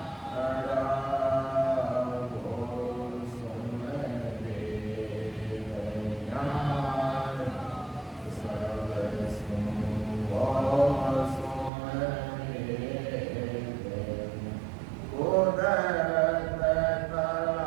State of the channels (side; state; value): left; drops out; at 11.7 s